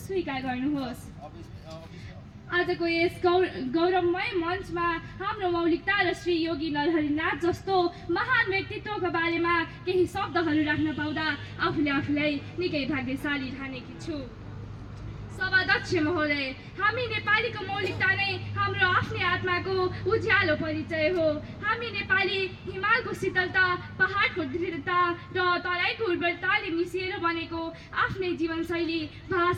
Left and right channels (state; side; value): identical; both; correlation 1.00